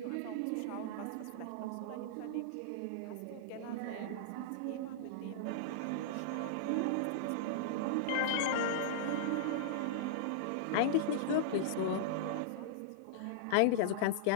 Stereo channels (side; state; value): both; different; correlation -0.02